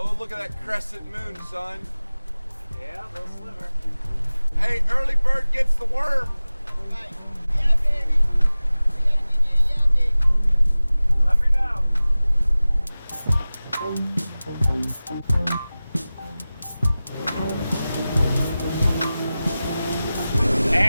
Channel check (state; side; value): inverted; both; correlation -0.97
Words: look at that crescent moon, son. Yeah, little sliver. Hey, early bird gets the worm. Right. Yeah, baby. We gotta give you a yeah, baby. Let me know.